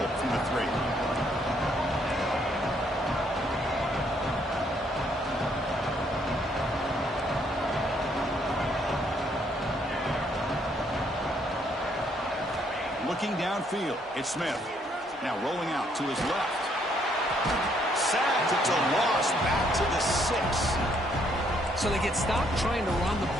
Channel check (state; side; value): normal; both; correlation 0.69